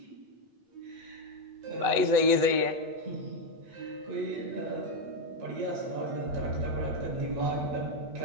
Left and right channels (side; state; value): left; late; 8.0 ms